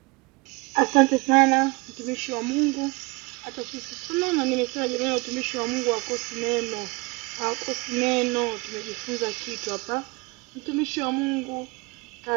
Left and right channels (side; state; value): left; quieter; 26.3 dB